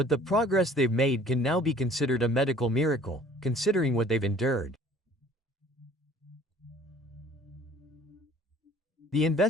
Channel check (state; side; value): normal; both; correlation 0.52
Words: the progress they've made can now be considered a medical miracle, considering what they've endured. The